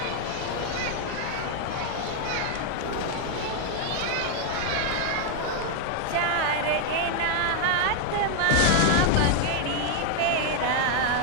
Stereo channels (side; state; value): both; different; correlation 0.00